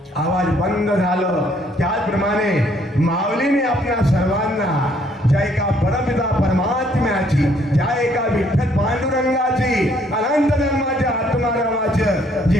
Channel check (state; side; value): normal; both; correlation 0.66